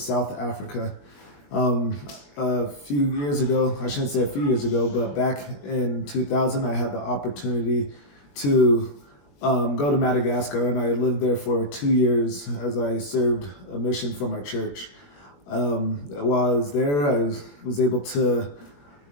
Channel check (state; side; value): late; right; 21 ms